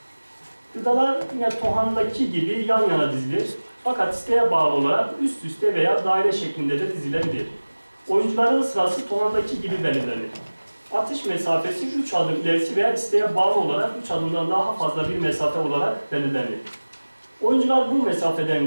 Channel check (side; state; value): both; inverted; correlation -1.00